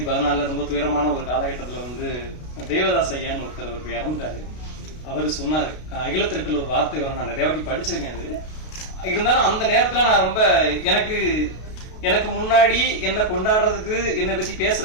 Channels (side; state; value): right; late; 33 ms